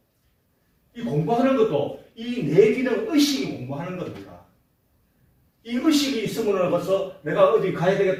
이 공부하는 것도 이 뇌 기능 의식이 공부하는 겁니다. 이 의식이 있으면 벌써 내가 어디 가야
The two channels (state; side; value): identical; both; correlation 1.00